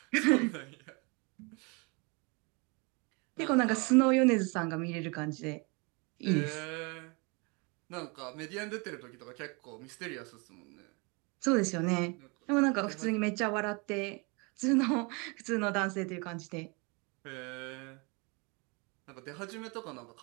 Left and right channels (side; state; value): left; quieter; 30.4 dB